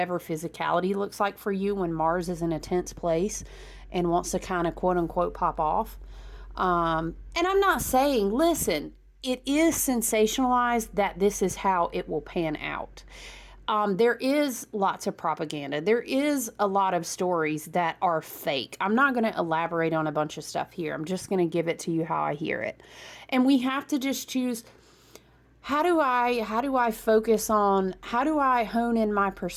physicality looks like for you when Mars is in a tense place and wants to kind of quote unquote pop off. And I'm not saying, listen, it is sensationalized that this is how it will pan out. There is lots of propaganda. There is a lot of stories that are fake. I'm not going to elaborate on a bunch of stuff here. I'm just going to give it to you how I hear it. And we have to just choose, how do I focus on, how do I hone in my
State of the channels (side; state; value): both; identical; correlation 1.00